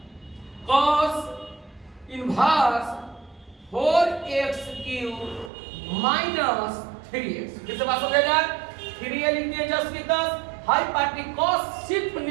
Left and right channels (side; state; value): left; drops out; at 5.5 s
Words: cos inverse 4x cube minus 3x। फिर से बात हो जाएगा, 3a लिख दिए जस्ट की 10, हाई पार्टी cos सिर्फ